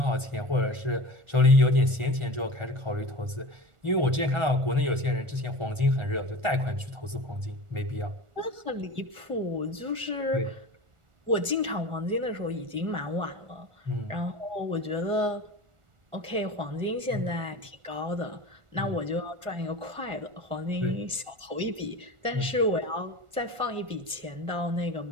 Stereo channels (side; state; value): left; late; 1.4 ms